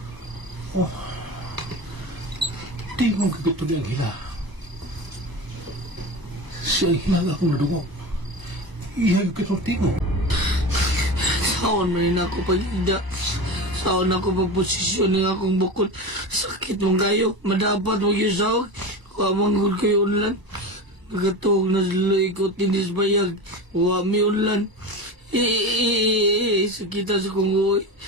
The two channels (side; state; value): left; late; 1.0 ms